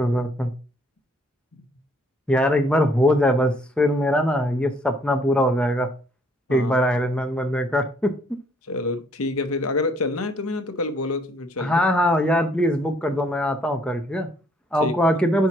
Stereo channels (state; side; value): normal; both; correlation 0.65